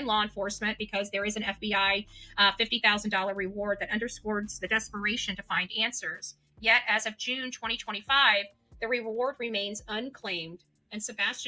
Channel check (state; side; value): identical; both; correlation 1.00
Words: law enforcement, because there is an FBI $50,000 reward that underscores the desperation to find answers. Yet, as of June 2025, the reward remains unclaimed and